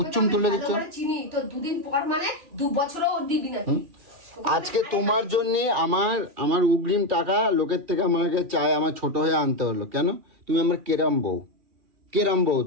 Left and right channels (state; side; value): late; left; 2.4 ms